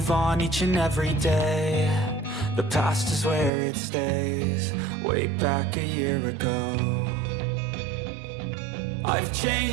on each and every day. The past is where it stays, way back a year ago. I've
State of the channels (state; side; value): drops out; left; at 3.5 s